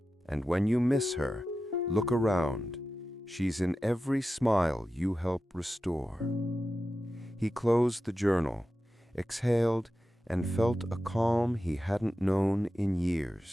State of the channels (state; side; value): normal; both; correlation 0.92